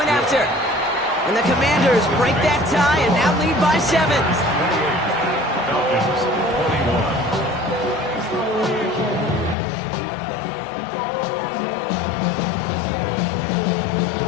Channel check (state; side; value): drops out; right; at 9.6 s